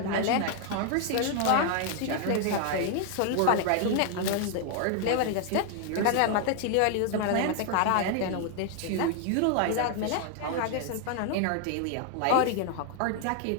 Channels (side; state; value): both; different; correlation 0.00